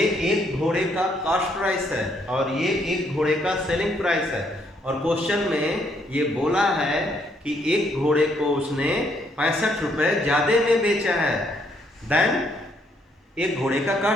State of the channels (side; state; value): both; normal; correlation 0.71